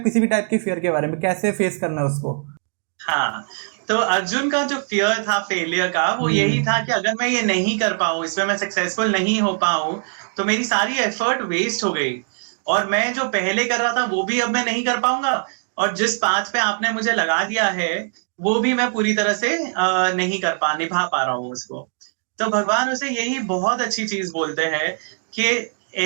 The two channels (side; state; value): left; silent; digital silence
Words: किसी भी टाइप की फियर के बारे में, कैसे फेस करना है उसको। हाँ, तो अर्जुन का जो फियर था फेलियर का, वो यही था कि अगर मैं ये नहीं कर पाऊं, इसमें मैं सक्सेसफुल नहीं हो पाऊं, तो मेरी सारी एफर्ट वेस्ट हो गई, और मैं जो पहले कर रहा था वो भी अब मैं नहीं कर पाऊंगा, और जिस पाथ पे आपने मुझे लगा दिया है वो भी मैं पूरी तरह से नहीं निभा पा रहा हूँ उसको। तो भगवान उसे यही बहुत अच्छी चीज बोलते हैं कि